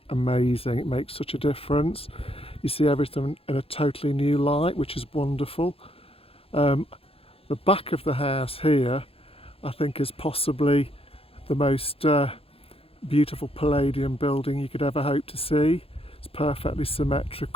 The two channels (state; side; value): late; right; 0.27 ms